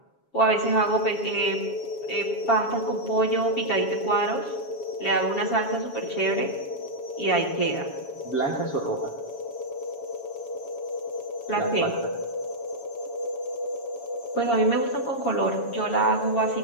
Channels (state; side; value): late; right; 7.2 ms